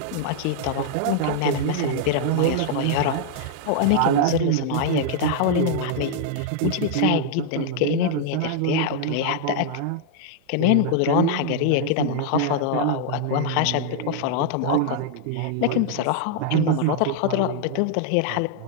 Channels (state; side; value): different; both; correlation 0.00